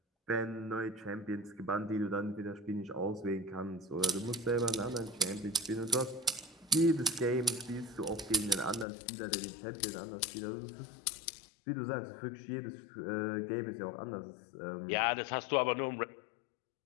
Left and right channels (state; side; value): drops out; right; at 8.8 s